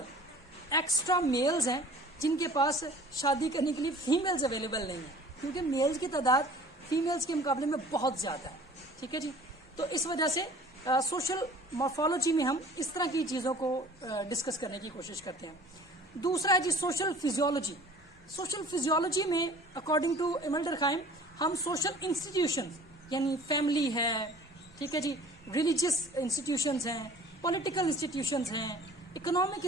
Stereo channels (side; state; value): both; normal; correlation 0.47